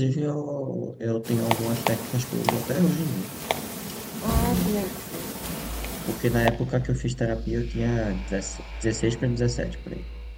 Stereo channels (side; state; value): both; identical; correlation 1.00